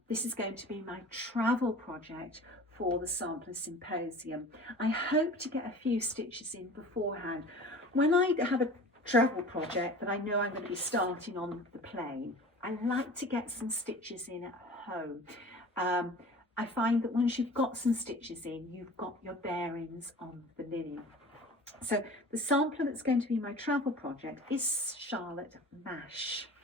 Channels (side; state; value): both; normal; correlation 0.40